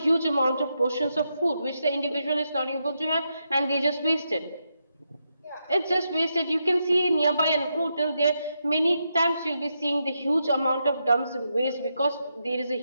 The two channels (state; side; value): inverted; both; correlation -0.84